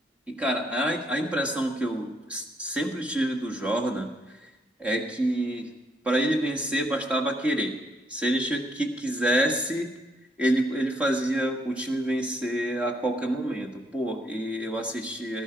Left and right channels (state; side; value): normal; both; correlation 0.72